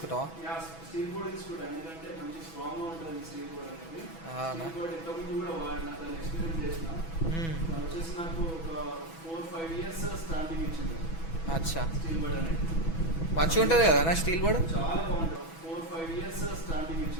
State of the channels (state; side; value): late; right; 6.1 ms